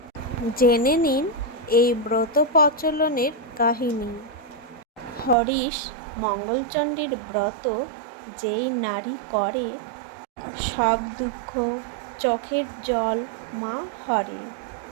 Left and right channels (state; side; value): drops out; left; at 5.4 s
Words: জেনে নিন এই ব্রত প্রচলনের কাহিনী। হরিশ মঙ্গলচণ্ডীর ব্রত যেই নারী করে, সব দুঃখ চোখের জল মা হরে।